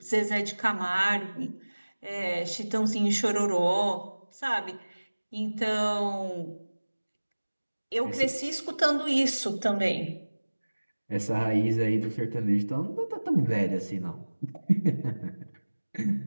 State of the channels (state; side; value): inverted; both; correlation -1.00